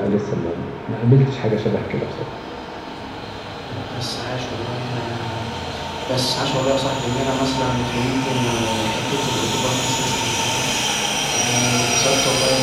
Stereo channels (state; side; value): identical; both; correlation 1.00